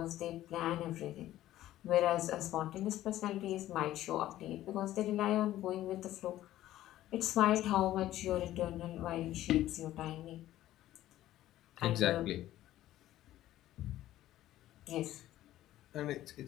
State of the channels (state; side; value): quieter; right; 14.0 dB